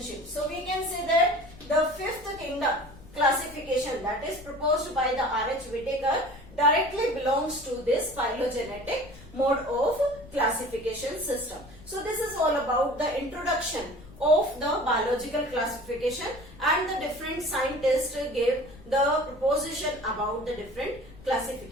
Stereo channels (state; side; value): noise; left; rumble, 20 dB below the sound